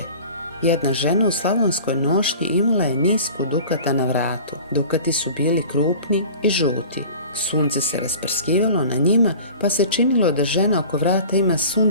Jedna žena u slavonskoj nošnji imala je nisku dukata na vratu. Dukati su bili krupni i žuti. Sunce se rasprskivalo na njima, pa se činilo da žena oko vrata ima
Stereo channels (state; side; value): inverted; both; correlation -0.41